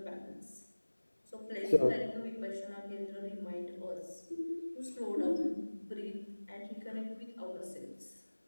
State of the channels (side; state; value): both; inverted; correlation -1.00